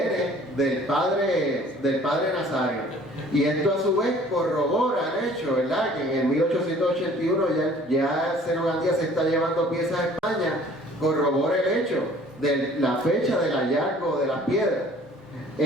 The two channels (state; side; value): normal; both; correlation 0.53